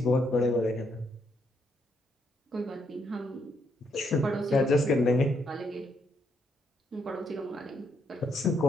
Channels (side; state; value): both; normal; correlation 0.75